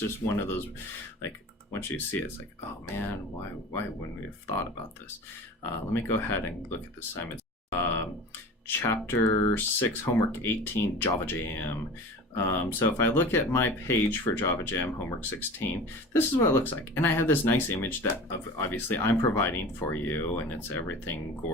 one of those, like, once you see it, it's like, oh man, why wouldn't we have thought about this? Let me go ahead and look at the assignments. Chapter 6, homework 18, Java Jam. So if I look at my page for Java Jam, homework 16, this is what it looks like. And I have this nice image that obviously I'm providing for you, and it's everything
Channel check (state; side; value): normal; both; correlation 0.37